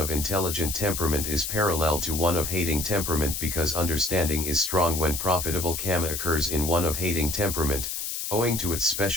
intelligent temperament is parallel to one of hating temperament because understanding is strong when profitable karma occurs in one of hating temperament, owing to its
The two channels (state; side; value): noise; left; hiss, 4 dB below the sound